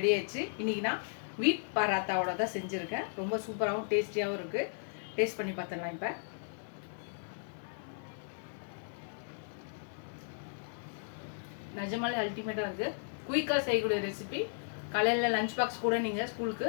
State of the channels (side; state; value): right; silent; digital silence